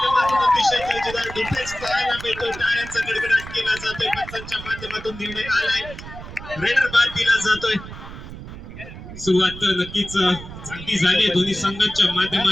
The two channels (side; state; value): right; noise; rumble, 13 dB below the sound